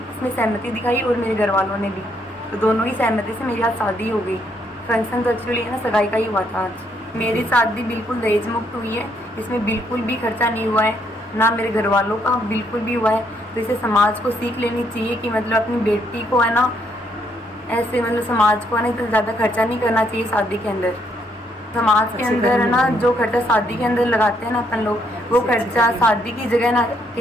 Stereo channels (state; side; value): normal; both; correlation 0.72